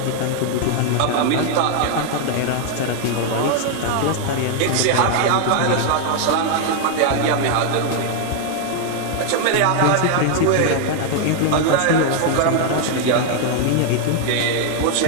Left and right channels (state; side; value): different; both; correlation 0.00